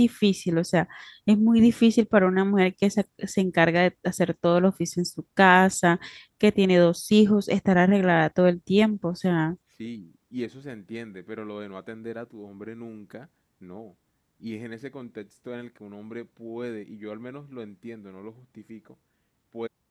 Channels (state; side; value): identical; both; correlation 1.00